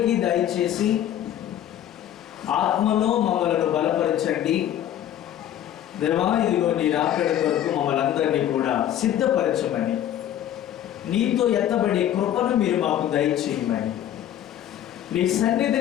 దయచేసి ఆత్మలో మమ్మలను బలపరచండి. దేవా, ఇదిగో నీ రాకడ కొరకు మమ్మల్ని అందరినీ కూడా సిద్ధపరచమని, నీతో ఎత్తబడే కృపను మీరు మాకు దయచేయమని, నీ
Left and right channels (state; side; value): quieter; right; 11.3 dB